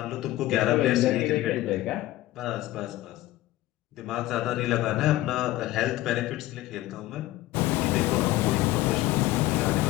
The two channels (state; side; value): quieter; right; 16.4 dB